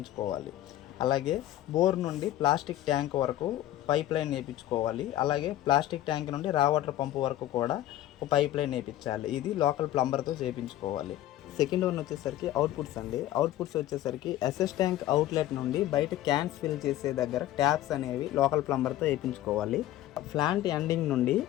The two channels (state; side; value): quieter; right; 13.6 dB